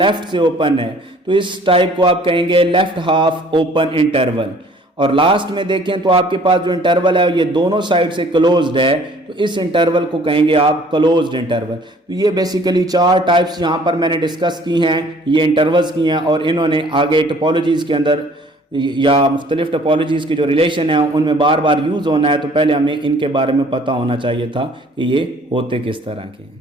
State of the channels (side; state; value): both; normal; correlation 0.54